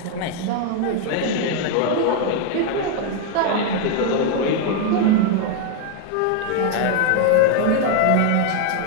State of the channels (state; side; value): different; both; correlation 0.01